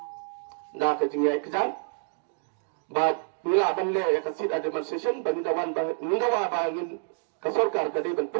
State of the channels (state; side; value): silent; left; 59 dB below the other